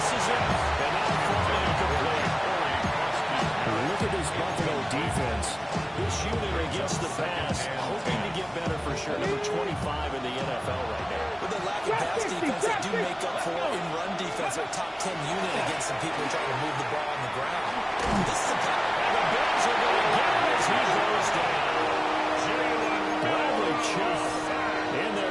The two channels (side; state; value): both; identical; correlation 1.00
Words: it. And now falling incomplete. Look at this Buffalo defense. This unit against the pass, hoping to get better for sure. Number 25 in the NFL right now. With the lack of pass defense, they do make up for it in run defense. They're a top 10 unit against some people trying to move the ball on the ground. This is a pass. And the Bills are going to get him as he goes down. Bradley Chubb in